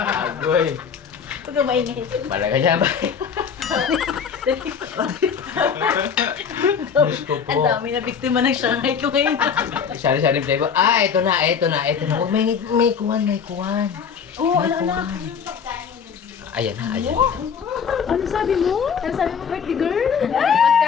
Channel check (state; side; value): quieter; right; 6.8 dB